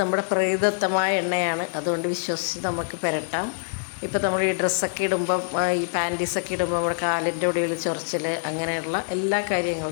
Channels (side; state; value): right; silent; digital silence